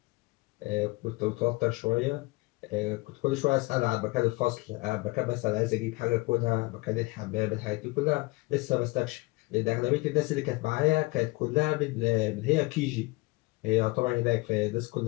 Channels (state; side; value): quieter; right; 23.6 dB